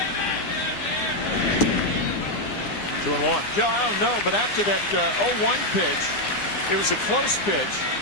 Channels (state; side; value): late; right; 9.8 ms